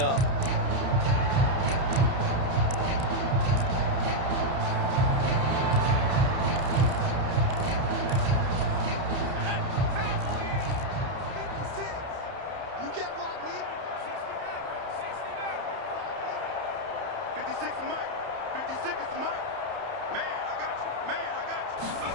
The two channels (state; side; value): late; left; 30 ms